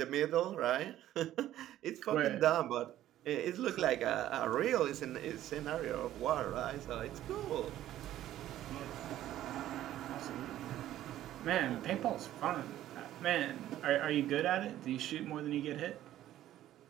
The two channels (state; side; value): quieter; left; 13.1 dB